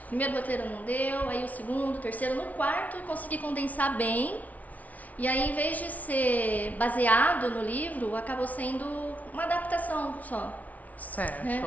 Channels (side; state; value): right; late; 0.072 ms